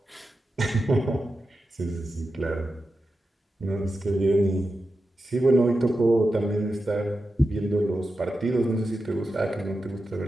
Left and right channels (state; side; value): normal; both; correlation 0.90